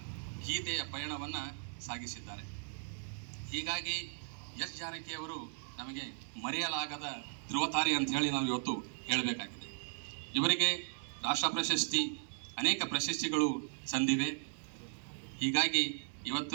ಗೀತೆಯ ಪಯಣವನ್ನು ಸಾಗಿಸಿದ್ದಾರೆ. ಹೀಗಾಗಿ ಎಸ್ ಜಾನಕಿಯವರು ನಮಗೆ ಮರೆಯಲಾಗದ ಧ್ರುವತಾರೆ ಅಂತ ಹೇಳಿ ನಾವು ಇವತ್ತು ಹೇಳಬೇಕಾಗಿದೆ. ಇವರಿಗೆ ರಾಷ್ಟ್ರ ಪ್ರಶಸ್ತಿ, ಅನೇಕ ಪ್ರಶಸ್ತಿಗಳು ಸಂದಿವೆ. ಹೀಗಾಗಿ ಇವತ್ತು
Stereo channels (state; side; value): silent; left; digital silence